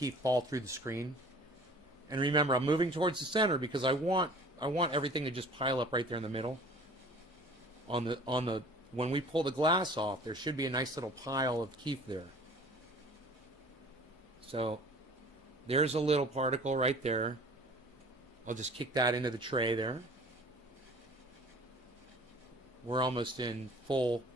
fall through the screen. And remember, I'm moving towards the center because I want everything to just pile up right there in the middle. On the when we pull the glass off, there should be a nice little pile of keef there. So there's a little particle right there. I'll just kick that into the tray there. We're almost in full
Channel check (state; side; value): normal; both; correlation 0.47